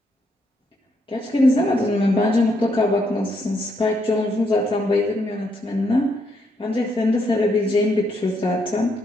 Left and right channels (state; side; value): normal; both; correlation 0.76